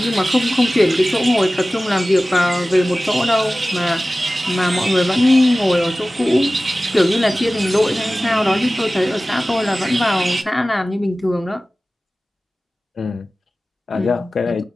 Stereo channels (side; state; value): both; normal; correlation 0.97